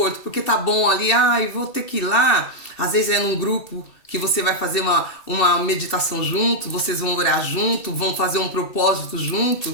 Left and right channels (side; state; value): right; late; 2.7 ms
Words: porque tá bom ali, vou ter que ir lá. Às vezes é num grupo que você vai fazer uma meditação junto, vocês vão orar junto, vão fazer um propósito